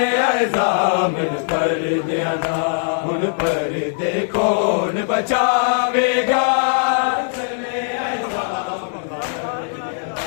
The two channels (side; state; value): right; silent; 66 dB below the other